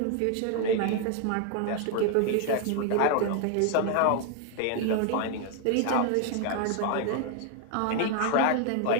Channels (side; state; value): both; different; correlation 0.01